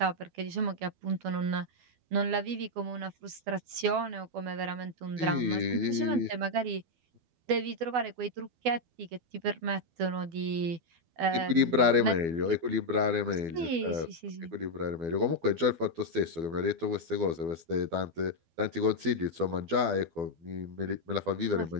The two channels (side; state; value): left; late; 12 ms